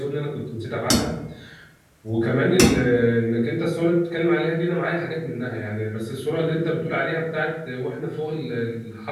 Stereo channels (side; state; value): both; identical; correlation 1.00